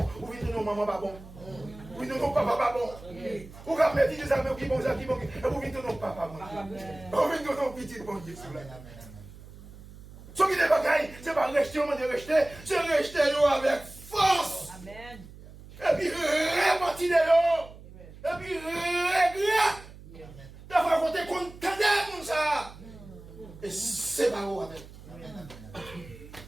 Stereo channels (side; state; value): right; noise; hum, 18 dB below the sound